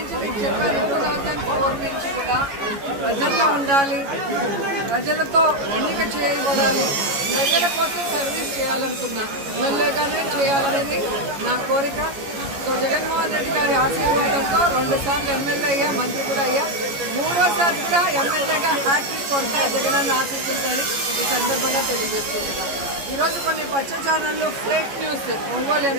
ప్రజల్లో ఉండాలి, ప్రజలతో ఎన్నిక చేయబడాలి, ప్రజల కోసం సర్వీస్ చేయాలనుకున్నా, ఎమ్మెల్యేగానే చేయాలనేది నా కోరిక. సో జగన్మోహన్ రెడ్డి గారి ఆశీర్వాదంతో 2 సార్లు ఎమ్మెల్యే అయ్యా, మంత్రి కూడా అయ్యా, 3వసారి కూడా ఎమ్మెల్యేగా హ్యాట్రిక్ కొడతా జగనన్న ఆశిస్తుందని ఈ సందర్భంగా తెలియజేస్తున్నాను. ఈరోజు కొన్ని పచ్చ ఛానళ్ళు ఫేక్ న్యూస్ ఒంగోలు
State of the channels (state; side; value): late; left; 14 ms